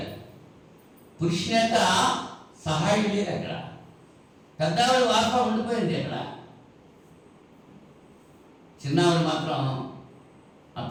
పురుషుని యొక్క సహాయం లేదు అక్కడ. పెద్దవాడు వార్త ఉండిపోయింది అక్కడ. చిన్నవాడు మాత్రం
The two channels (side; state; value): both; identical; correlation 1.00